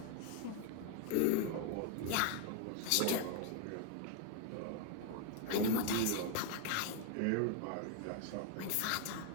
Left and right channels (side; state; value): both; different; correlation 0.01